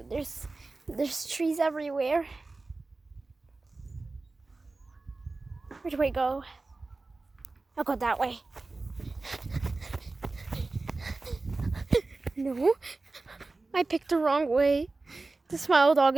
There's trees everywhere. Where do I go? I'll go that way. No, I picked the wrong way. The smile dog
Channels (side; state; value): left; quieter; 3.4 dB